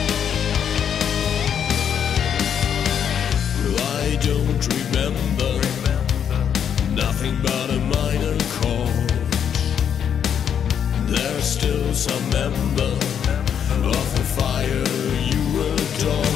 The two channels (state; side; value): quieter; right; 8.4 dB